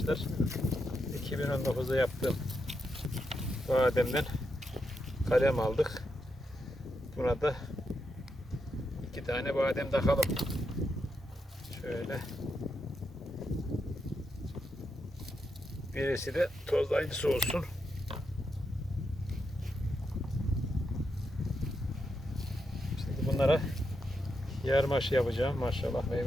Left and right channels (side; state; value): both; normal; correlation 0.83